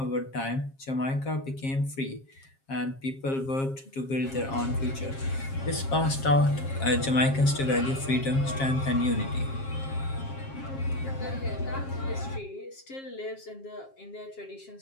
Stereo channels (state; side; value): late; right; 7.4 ms